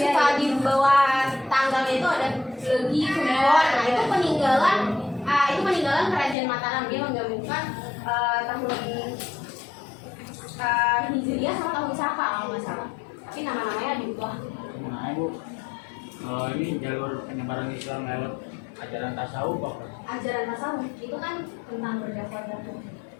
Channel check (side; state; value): right; drops out; at 6.4 s